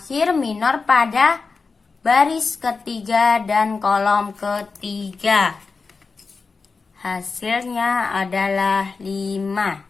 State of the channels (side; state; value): right; quieter; 4.5 dB